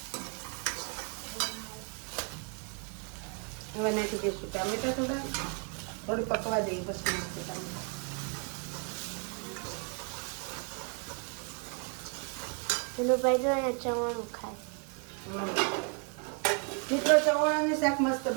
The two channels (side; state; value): left; quieter; 38.7 dB